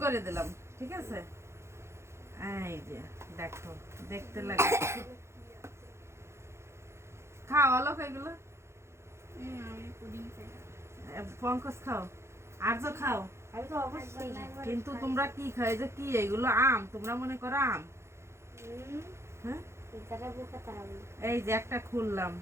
করে দিলাম, ঠিক আছে? এই যে দেখো, দেখতে লাগে। খাও অলোক এগুলো, পঙ্কজ খাও, আর তো খাও। কিন্তু তোমরা কি খাই যে কি এগুলো আম, তোমরা মনে করো আম? হ্যাঁ, এই যে একটা খুললাম,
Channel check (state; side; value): late; left; 0.13 ms